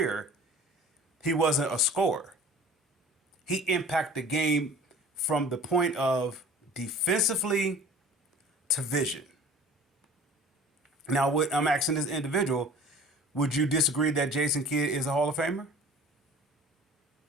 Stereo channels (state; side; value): normal; both; correlation 0.44